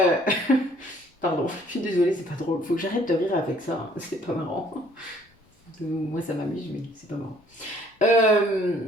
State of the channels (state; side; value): normal; both; correlation 0.60